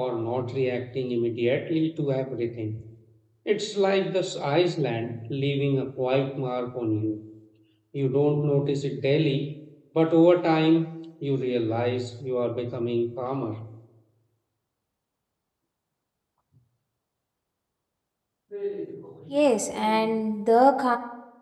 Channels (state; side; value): identical; both; correlation 1.00